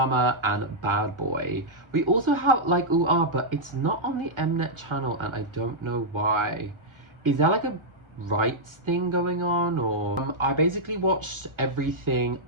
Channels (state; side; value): late; left; 1.3 ms